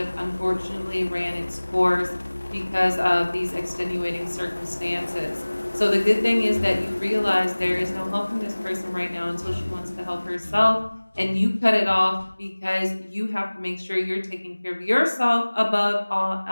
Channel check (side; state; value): both; inverted; correlation -1.00